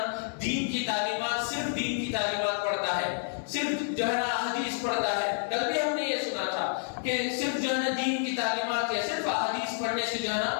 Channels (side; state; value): right; silent; 57 dB below the other